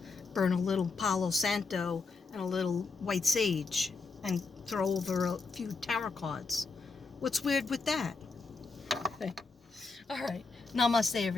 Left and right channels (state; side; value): quieter; right; 4.1 dB